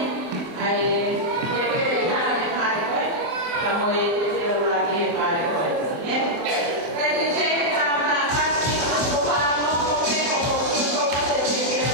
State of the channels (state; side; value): late; left; 24 ms